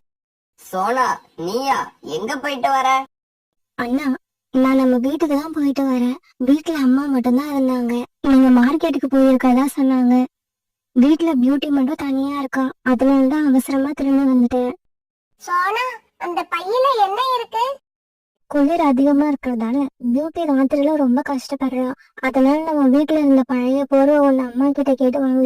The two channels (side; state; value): both; identical; correlation 1.00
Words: சோனா, நீயா? எங்க போயிட்டு வர? அண்ணா, நான் நம்ம வீட்டுக்கு தான் போயிட்டு வரேன். வீட்டுல அம்மா மட்டும்தான் இருந்தாங்க. நீங்க மார்க்கெட்டுக்கு போயிருக்கதா சொன்னாங்க. வீட்டுல பியூட்டி மட்டும் தனியா இருக்கா. அதனாலதான் அவசரமா திரும்பி வந்துட்டேன். சோனா, அந்த பையில என்ன இருக்கு? குளிர் அதிகமா இருக்கிறதால பியூட்டி ராத்திரில ரொம்ப கஷ்டப்படுறா. அதனால நம்ம வீட்டுல இருந்த பழைய போர்வை ஒண்ணு அம்மா கிட்ட கேட்டு